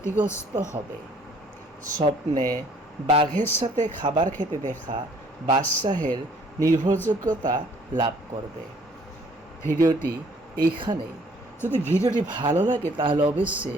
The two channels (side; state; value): both; normal; correlation 0.59